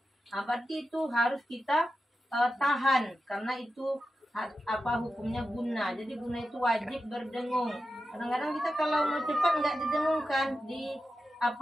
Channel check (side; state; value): both; normal; correlation 0.91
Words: Berarti itu harus kita tahan karena itu apa hukumnya guna. Jadi guna itu wajib berdengung. Kadang-kadang kita kalau mau cepat nggak didengungkan, di